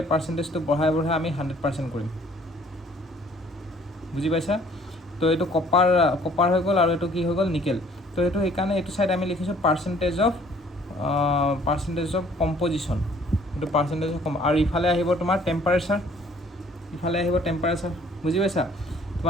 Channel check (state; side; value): normal; both; correlation 0.58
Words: পাৰ্চেন্টেজটো বঢ়াই আমি 100% কৰিম বুজি পাইছা তো এইটো কপাৰ হৈ গ'ল আৰু এইটো কি হৈ গ'ল নিকেল তো এইটো সেইকাৰণে এইটো সাইড আমি লিখিছোঁ পাৰ্চেন্টেজ অফ কম্পজিশ্যন এইটো পাৰ্চেন্টেজ অফ আৰু ইফালে আহিব তোমাৰ টেম্পাৰেচাৰ বুজি পাইছা